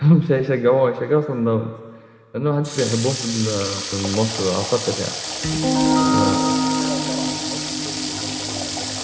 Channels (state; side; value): identical; both; correlation 1.00